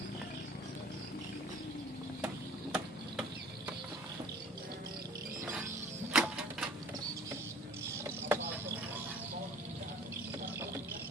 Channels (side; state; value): both; normal; correlation 0.48